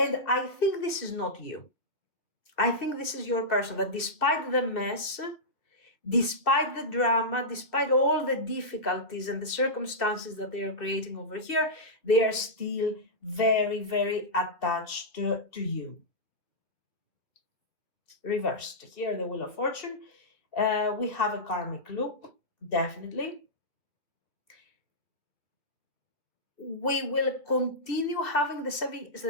I think this is not you. I think this is your person that despite the mess, despite the drama, despite all the difficulties and the circumstances that they are creating over here, they are still very, very attached to you. Reversed. Here, the Wheel of Fortune. We have a karmic loop, definitely. We will continue having the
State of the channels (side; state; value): right; late; 2.3 ms